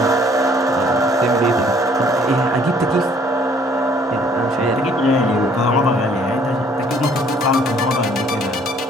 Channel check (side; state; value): both; normal; correlation 0.60